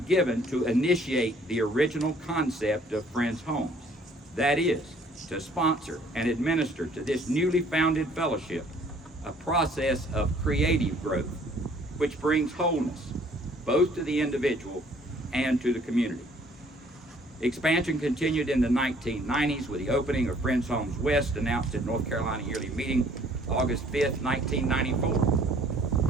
to initiate the original concept of Friends Homes. That is, to sponsor and administer to this newly founded fellowship a process of creative growth, which brings wholeness both to the individual and to the community. Expansion continued in the 1990s with the opening of Friends Homes West, announced at North Carolina Yearly Meeting, August 5th,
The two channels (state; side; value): normal; both; correlation 0.59